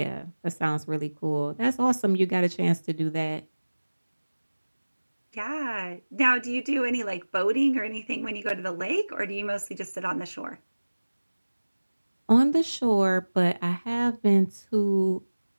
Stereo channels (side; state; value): both; inverted; correlation -1.00